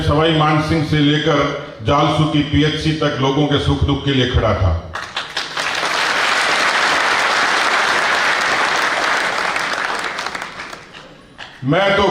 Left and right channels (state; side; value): identical; both; correlation 1.00